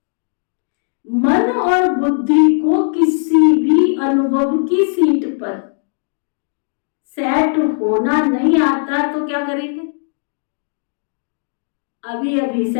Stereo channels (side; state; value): right; silent; digital silence